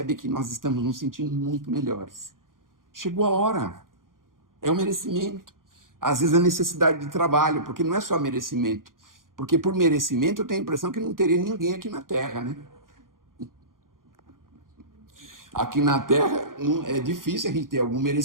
que nós estamos nos sentindo muito melhores. Chegou a hora, é o merecimento. Às vezes a necessidade de trabalho, porque não é só merecimento. Porque por merecimento eu tenho a impressão que não teria ninguém aqui na Terra, né? Aqui na Terra é difícil a gente ter algum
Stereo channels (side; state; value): left; late; 0.90 ms